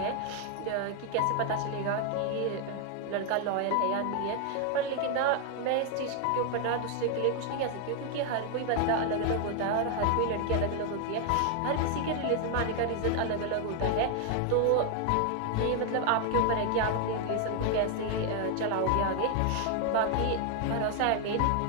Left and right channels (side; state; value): both; different; correlation 0.00